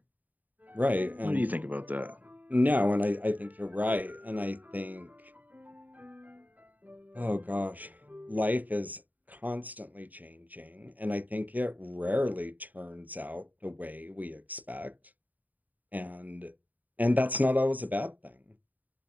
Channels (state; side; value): late; left; 0.082 ms